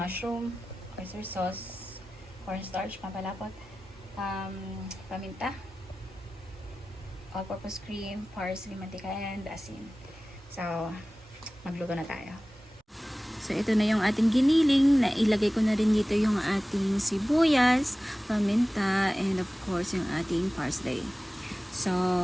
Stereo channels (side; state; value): both; normal; correlation 0.96